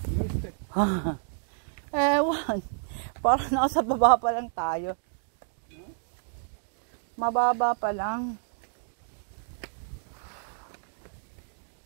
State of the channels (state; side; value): silent; left; digital silence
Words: Ewan. Parang nasa baba pa lang tayo. Mababa pa lang.